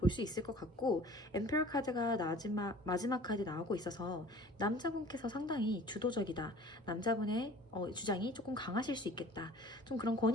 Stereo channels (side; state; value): both; normal; correlation 0.46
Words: 수 있을 것 같고, 엠페러 카드가 마지막 카드 나오고 있어서 남자분께서 상당히 주도적이다, 남자분의 주장이 조금 강하실 수 있겠다, 좀 그런